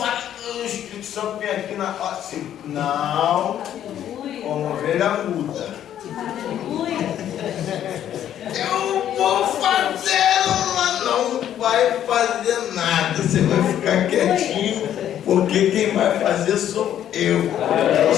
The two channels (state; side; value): quieter; right; 10.7 dB